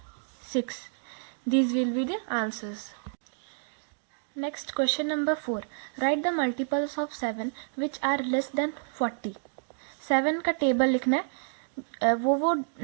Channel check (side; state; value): left; silent; digital silence